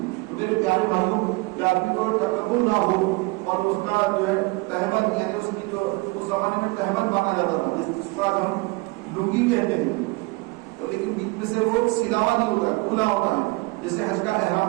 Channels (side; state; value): left; quieter; 25.4 dB